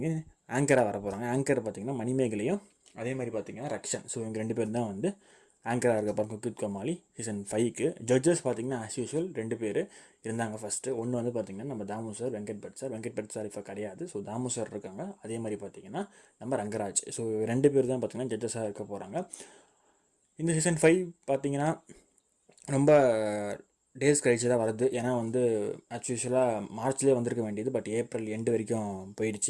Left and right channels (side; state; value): both; identical; correlation 1.00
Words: ஆங்கராக வர போகிறாங்க. ஆங்கர் பார்த்திங்கன்னா மணிமேகலையும் அதே மாதிரி பார்த்திங்கன்னா ரக்ஷன். ஸோ இவங்க 2 பேர் தான் வந்து ஆங்கராக இருக்க போகிறாங்க குக் வித் கோமாளி சீசன் 5க்கு. ஜட்ஜஸ் பார்த்திங்கன்னா ஆஸ் யூஷுவல் 2 பேர் இருந்தாங்க ஃபஸ்ட்டு. ஒன்று வந்து பார்த்திங்கன்னா நம்ம தாமு சார், வெங்கட் பட் சார் இப்போ கிடையாது. ஸோ தாமு சார் இருக்காங்க. அதே மாதிரி பார்த்திங்கன்னா நம்ம ரங்கராஜ். ஸோ 2 பேர் தான் பார்த்திங்கன்னா ஜட்ஜஸாக இருக்க போகிறாங்க. இந்த சீசன் 5 பார்த்திங்கன்னா ரொம்ப டேஸ் கழிச்சு தான் வருது. ஏன்னா வந்து ஆக்சுவலாக மார்ச்லேயே வந்திருக்க வேண்டியது, பட் ஏப்ரல் எண்டு வரைக்கும்